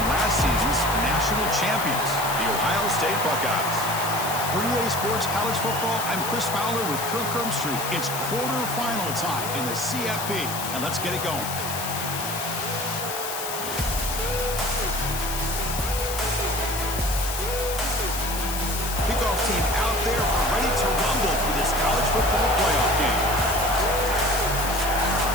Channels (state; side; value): noise; left; hiss, 6 dB below the sound